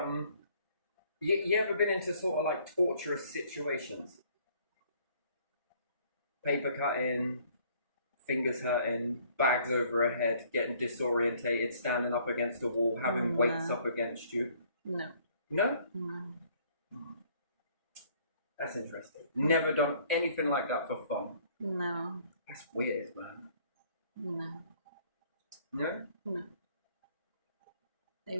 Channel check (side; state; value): both; inverted; correlation -0.61